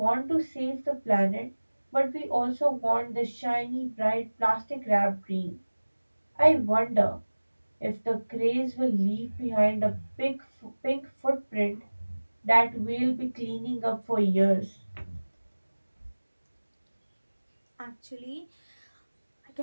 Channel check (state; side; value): inverted; both; correlation -1.00